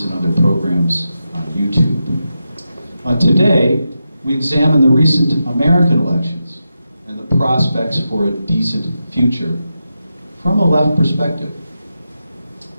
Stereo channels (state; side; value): inverted; both; correlation -0.89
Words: and other programs on YouTube. Today, we examine the recent American elections and the prospects for a decent future from a left perspective.